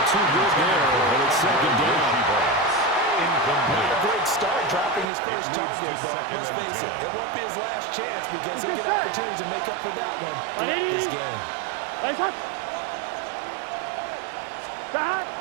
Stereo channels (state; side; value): drops out; left; at 5.1 s